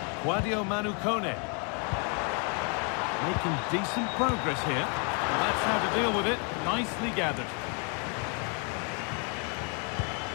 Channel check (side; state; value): right; quieter; 37.4 dB